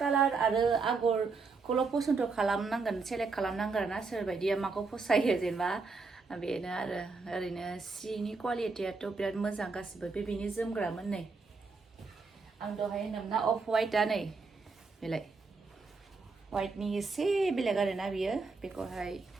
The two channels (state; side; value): quieter; left; 4.3 dB